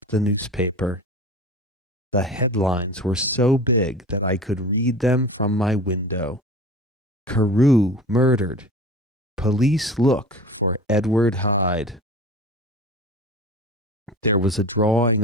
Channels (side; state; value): both; normal; correlation 0.36